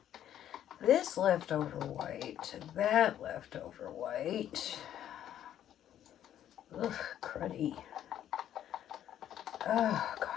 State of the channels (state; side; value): quieter; right; 11.0 dB